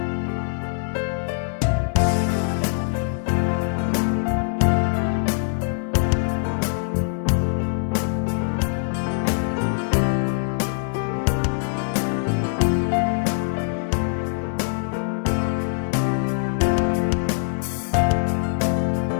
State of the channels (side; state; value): right; silent; digital silence